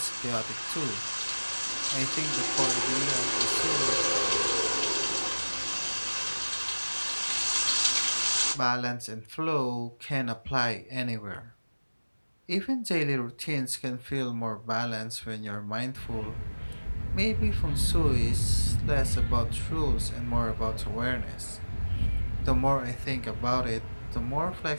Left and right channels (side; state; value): both; inverted; correlation -1.00